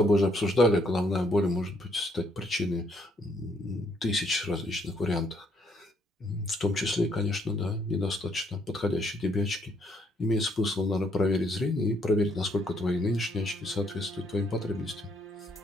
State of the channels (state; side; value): normal; both; correlation 0.70